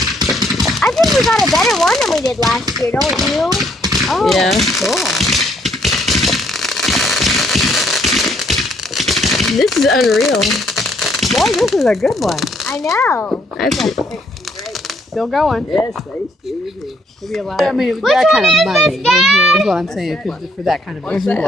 I think we got a better one than we did last year, don't you? Oh, Yeah. cool. This is unreal. Boy, this is a good one. I know. That's Still going. Yes, they sure do. Maybe a lot. I mean, Which that one kind of is money this, Dad? is what I'm saying. For that kind of What's that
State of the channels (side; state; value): both; normal; correlation 0.68